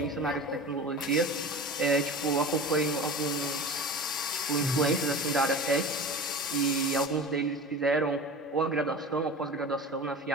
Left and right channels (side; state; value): both; normal; correlation 0.34